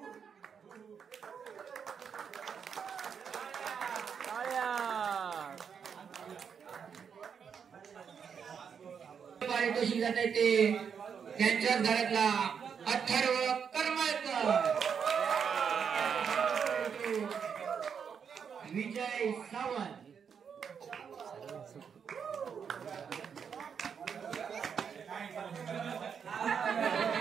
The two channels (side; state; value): left; quieter; 7.0 dB